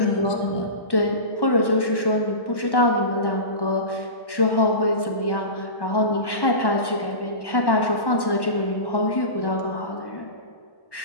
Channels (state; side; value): late; right; 1.1 ms